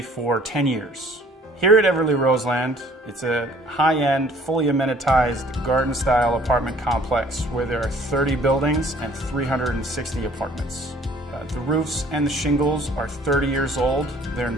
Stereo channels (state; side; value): normal; both; correlation 0.56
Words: for 10 years. Here at Everly Roseland, it's a high-end, fully amenitized garden-style apartment complex where there are 30 buildings and 360 apartments. The roofs and the shingles are 30 years old. They're in